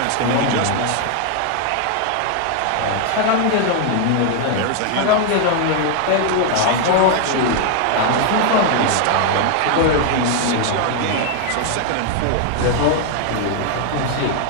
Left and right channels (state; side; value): different; both; correlation 0.00